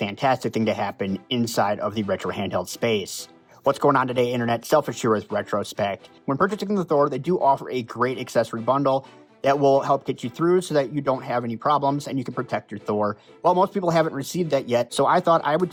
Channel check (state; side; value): identical; both; correlation 1.00